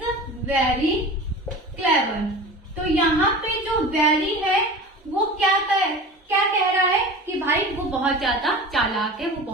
very clever. तो यहाँ पे जो वेरी है वो क्या कह रहा है कि भाई वो बहुत ज्यादा चालाक है, वो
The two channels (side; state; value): both; normal; correlation 0.35